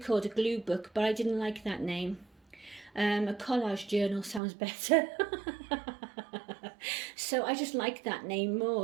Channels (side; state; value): left; drops out; at 4.4 s